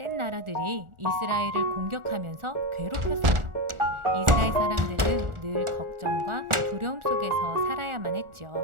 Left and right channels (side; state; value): left; late; 1.4 ms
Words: 나라들이 이스라엘을 공격하면서 괴롭혔어요. 이스라엘 사람들은 늘 걱정과 두려움 속에서 살아야만 했죠.